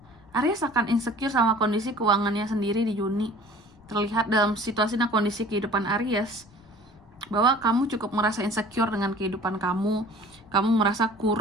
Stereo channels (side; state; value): left; noise; rumble, 27 dB below the sound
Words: Aries akan insecure sama kondisi keuangannya sendiri di Juni. Terlihat dalam situasi dan kondisi kehidupan Aries bahwa kamu cukup merasa insecure dengan kehidupan kamu. Kamu merasa